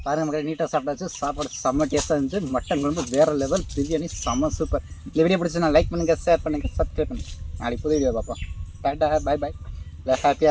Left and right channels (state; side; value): identical; both; correlation 1.00